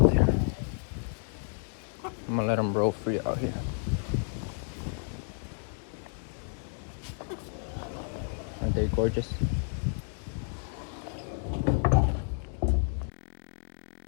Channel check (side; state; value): right; silent; 56 dB below the other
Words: I'm gonna let them roll free out here. Aren't they gorgeous? Como me lo